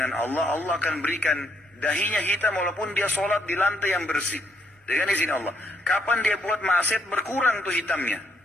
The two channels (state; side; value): normal; both; correlation 0.73